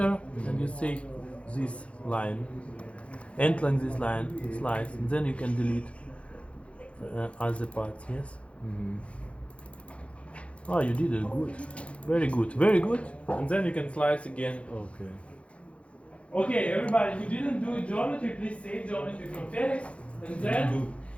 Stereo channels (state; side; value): late; right; 0.062 ms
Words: and you say this line, end like this line, slice, and then you can delete other parts, yes? Oh, you did it good. Very good, very good. And then you can slice again. Okay. Okay, everybody who didn't do geometry, please save geometry from Felix, and then